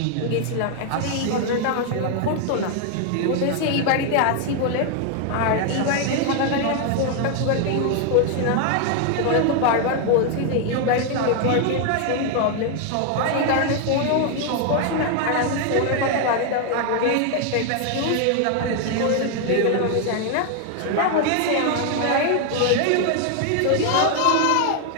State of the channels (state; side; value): different; both; correlation 0.00